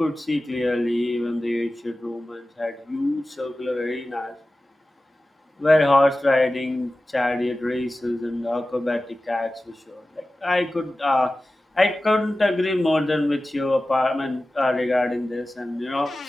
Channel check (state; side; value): normal; both; correlation 0.95